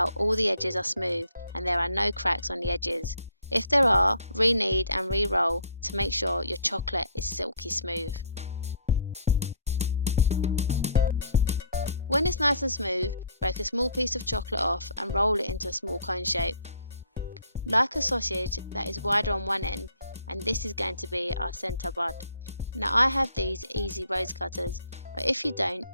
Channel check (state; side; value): inverted; both; correlation -0.59